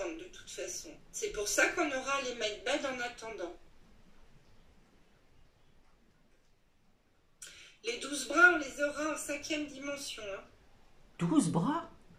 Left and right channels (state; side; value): identical; both; correlation 1.00